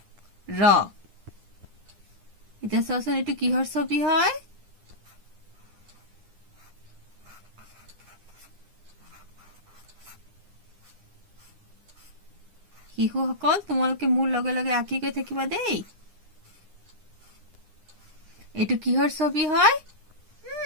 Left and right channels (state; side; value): late; left; 9.9 ms